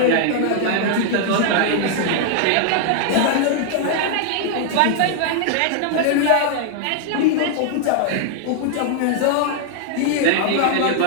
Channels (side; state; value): both; different; correlation 0.00